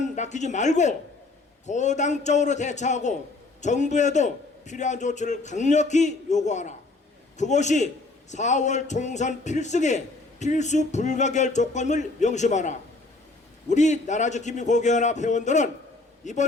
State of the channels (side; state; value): right; quieter; 3.3 dB